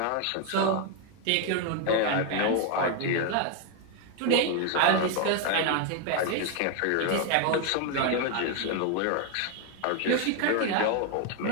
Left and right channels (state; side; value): different; both; correlation 0.01